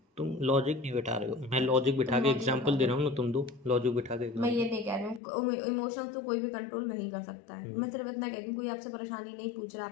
तुम लॉजिक नहीं बिठा रहे हो, मैं लॉजिक बिठा तुम के लॉजिक एग्जांपल बता दे दो। रहा हूँ ना, तुम दो लॉजिक बिठा के मैं ये एग्जांपल। नहीं कह रही हूँ इमोशंस तो कोई भी कंट्रोल नहीं कर सकता है। मैं सिर्फ इतना कह रही हूँ, कोई आपसे परेशानी नहीं पूछ रहा,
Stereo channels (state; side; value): drops out; right; at 5.2 s